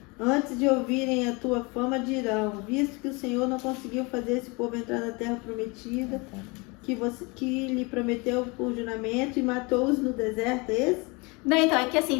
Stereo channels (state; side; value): quieter; right; 27.6 dB